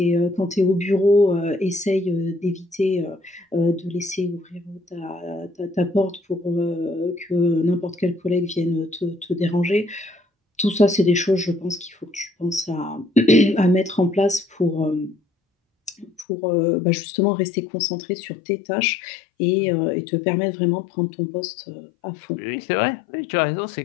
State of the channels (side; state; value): right; drops out; at 16.2 s